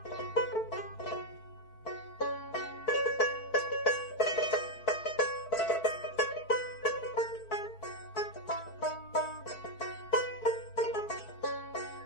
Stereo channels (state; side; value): late; right; 4.6 ms